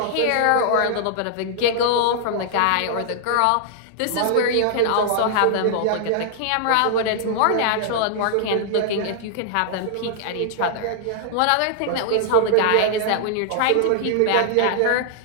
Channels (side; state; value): both; different; correlation -0.01